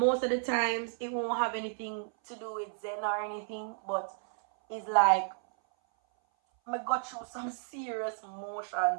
of the times, it won't have anything to do with Zen or anything, but it's like I go through some serious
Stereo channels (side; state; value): left; silent; 56 dB below the other